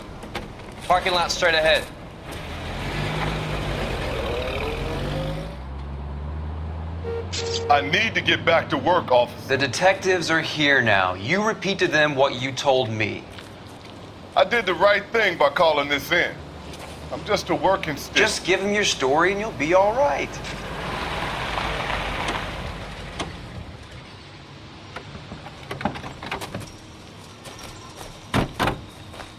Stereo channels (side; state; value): both; identical; correlation 1.00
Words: Parking lot straight ahead. I need to get back to work, officer. The detectives are here now. You repeat to them what you told me. I did the right thing by calling this in. I'm just a working stick. Just give them your story and you'll be all right.